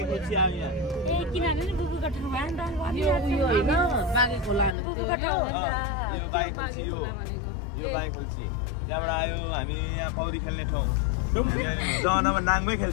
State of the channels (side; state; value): right; drops out; at 4.8 s